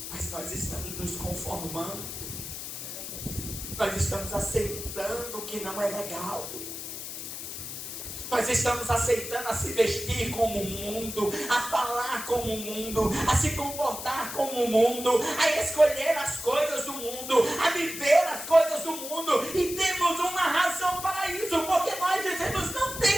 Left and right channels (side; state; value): left; noise; hiss, 8 dB below the sound